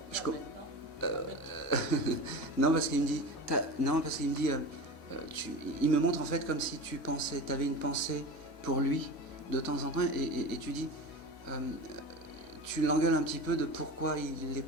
non parce qu'il me dit, il me montre en fait comme si tu avais une pensée pour lui de temps en temps et tu dis, tu l'engueules un petit peu de pourquoi il est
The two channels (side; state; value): both; normal; correlation 0.30